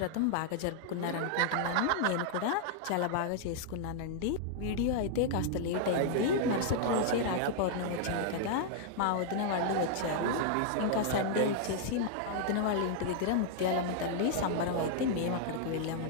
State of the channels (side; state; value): both; different; correlation -0.01